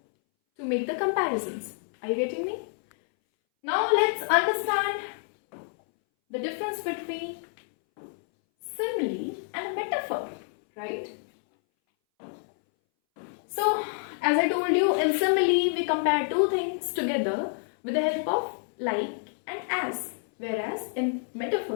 to make the comparisons. Are you getting me? Now let's understand the difference between simile and metaphor, right? So as I told you, in simile we compare two things together with the help of like and as, whereas in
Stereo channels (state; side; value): silent; right; 59 dB below the other